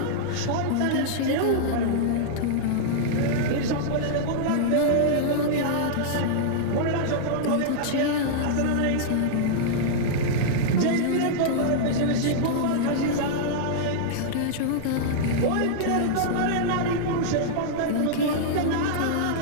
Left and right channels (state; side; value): different; both; correlation -0.02